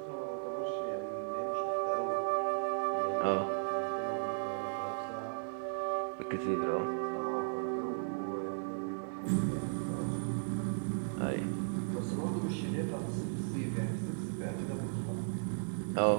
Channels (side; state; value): left; silent; 54 dB below the other